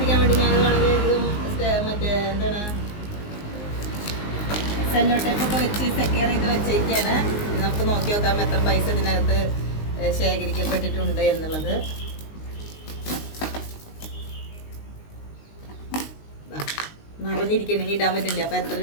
വേണ്ടി ഞാൻ വളരെയധികം മറ്റേ എന്താണ് സെല്ലോ ടേപ്പൊക്കെ വെച്ച് സെക്യൂർ ചെയ്ത് വെച്ചേക്കാണ്. നമുക്ക് നോക്കി നോക്കാം എത്ര പൈസ ഇതിനകത്ത് ശേഖരിക്കപ്പെട്ടിട്ടുണ്ട് എന്നുള്ളത്. നിറഞ്ഞിരിക്കണെങ്കിൽ ഇടാൻ പറ്റില്ല. അപ്പം എത്ര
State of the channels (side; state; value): right; late; 19 ms